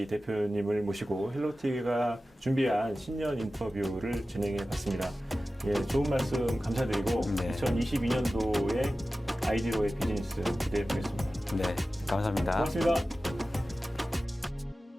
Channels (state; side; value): normal; both; correlation 0.95